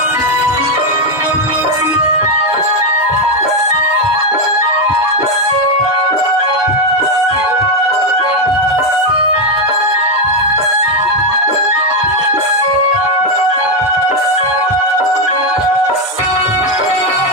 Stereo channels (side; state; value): both; normal; correlation 0.06